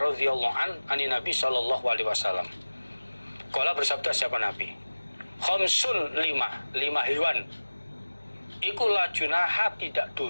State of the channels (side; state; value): both; inverted; correlation -1.00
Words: an Nabi sallallahu alaihi wasallam. Qala bersabda siapa Nabi? Khamsun 5 hewan. Iku la junaha tidak